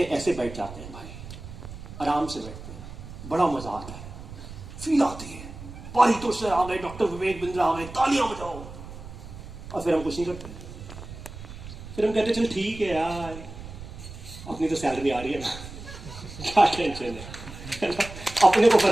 ऐसे बैठ जाते हैं भाई, आराम से बैठते हैं, बड़ा मजा आता है, फील आती है, पारितोष सर आ गए, डॉक्टर विवेक बिंद्रा आ गए, तालियां बजाओ, और फिर हम कुछ नहीं करते। फिर हम कहते चल ठीक है यार, अपनी तो सैलरी आ रही है ना, क्या टेंशन है ना? अपने को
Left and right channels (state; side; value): noise; right; rumble, 13 dB below the sound